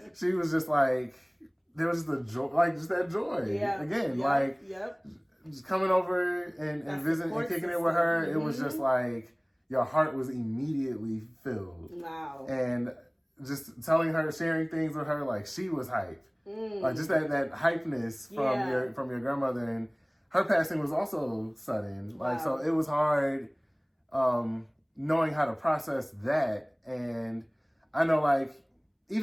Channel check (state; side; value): identical; both; correlation 1.00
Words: she was just like, there was just the joy, like just that joy. Yeah. Again, just coming over and visiting and kicking it with her, it was just like your heart was immediately filled. Wow. And just telling her, sharing things with her, like she was hype. Like just that hypeness from your grandmother, and her passing was also sudden. Like so it was hard knowing how to process that. And I know like